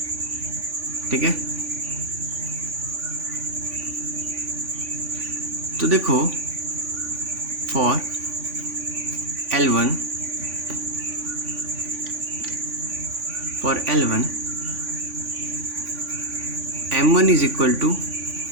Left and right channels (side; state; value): left; late; 3.5 ms